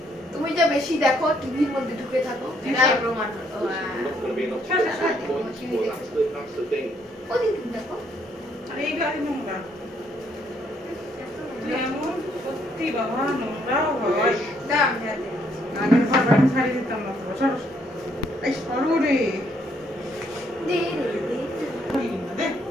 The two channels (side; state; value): both; normal; correlation 0.70